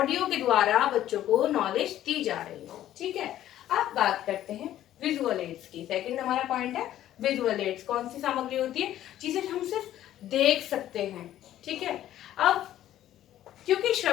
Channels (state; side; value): quieter; right; 12.6 dB